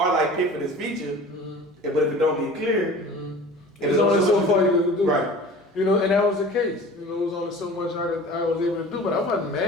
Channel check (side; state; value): both; normal; correlation 0.41